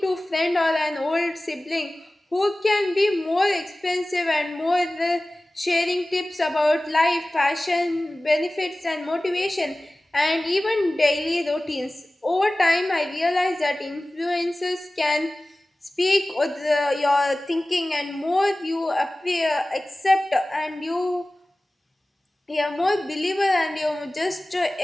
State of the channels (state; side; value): normal; both; correlation 0.97